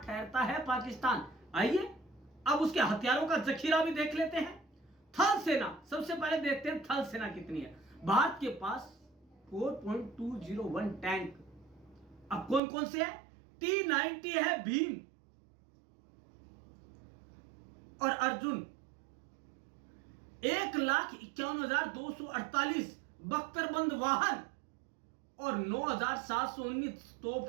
है पाकिस्तान? आइए अब उसके हथियारों का जखीरा भी देख लेते हैं। थल सेना, सबसे पहले देखते हैं थल सेना कितनी है। भारत के पास 4.201 टैंक। अब कौन कौन से है? T-90 है भीम और अर्जुन, 1,51,248 बख्तरबंद वाहन और 9,719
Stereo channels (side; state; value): left; drops out; at 12.6 s